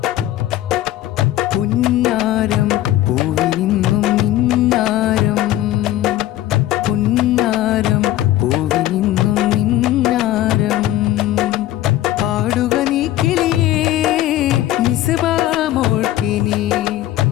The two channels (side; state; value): right; quieter; 14.3 dB